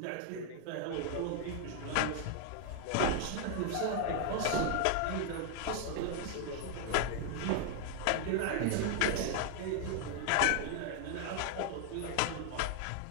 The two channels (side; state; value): both; different; correlation 0.00